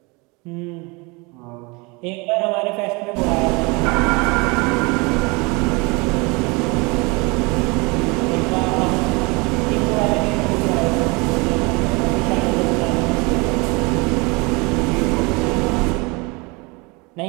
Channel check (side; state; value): left; quieter; 27.4 dB